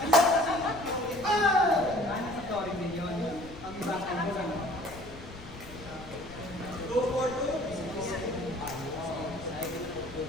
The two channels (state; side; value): noise; left; rumble, 16 dB below the sound